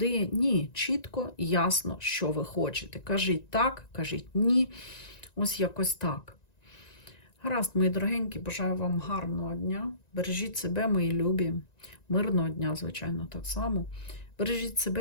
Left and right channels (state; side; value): late; right; 1.9 ms